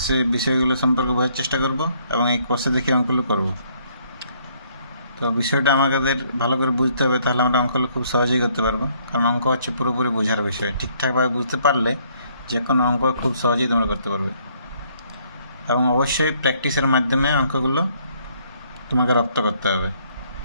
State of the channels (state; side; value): inverted; both; correlation -0.66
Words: সেই বিষয়গুলো সম্পর্কে বোঝার চেষ্টা করব এবং এই কোর্সে দেখে অঙ্কগুলো করব। তো বিষয়টা আমাদের ভালো করে বুঝতে হবে, তাহলে আমরা অঙ্কগুলো খুব সহজেই করতে পারবো। কারণ অঙ্ক হচ্ছে পুরোপুরি বোঝার বিষয়। ঠিকঠাকভাবে বুঝতে পারলে যে কোনো অঙ্ক খুব সহজেই তোমরা করতে পারবে, এবং অবশ্যই প্র্যাকটিসের মাধ্যমে অঙ্কগুলো তোমাকে রপ্ত করতে হবে,